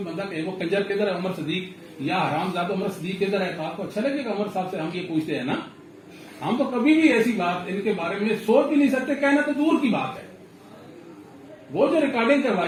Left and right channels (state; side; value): identical; both; correlation 1.00